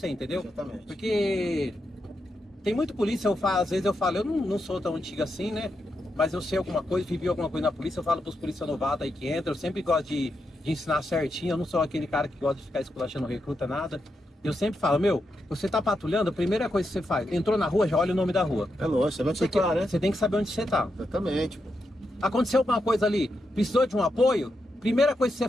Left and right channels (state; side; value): normal; both; correlation 0.85